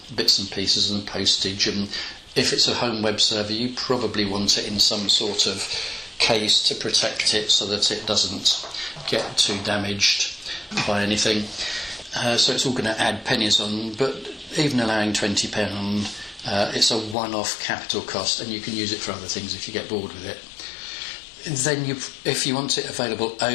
bits and pieces and postage. And if it's a home web server, you probably want it in some sort of case to protect it so that it doesn't get too damaged by anything. So it's all going to add pennies on, but even allowing £20, it's a one-off capital cost, and you can use it for other things if you get bored with it. Then if you want it available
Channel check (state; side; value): drops out; right; at 17.2 s